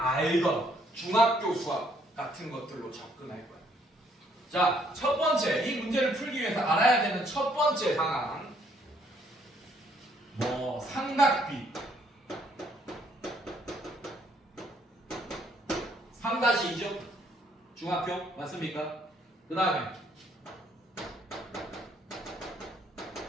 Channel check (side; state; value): both; normal; correlation 0.67